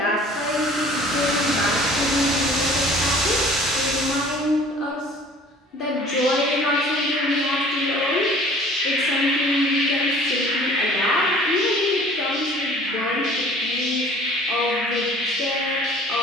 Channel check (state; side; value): normal; both; correlation 0.49